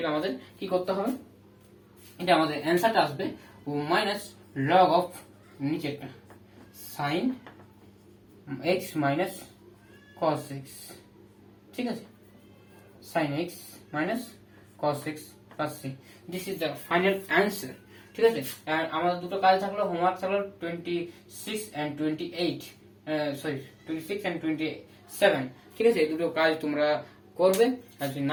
আমাদের কি করতে হবে, এটা আমাদের অ্যান্সারটা আসবে মাইনাস লগ অফ নিচেরটা sine x minus cos x, ঠিক আছে, sin x minus cos x plus c. This is the final answer. ঠিক আছে, আর আমাদের দুটো কাজ থাকলো, হোমওয়ার্ক থাকলো 26 and 28, সরি 26 and 27, ঠিক আছে। এই দুটো কাজ তোমরা করবে, আর যদি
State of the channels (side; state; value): both; identical; correlation 1.00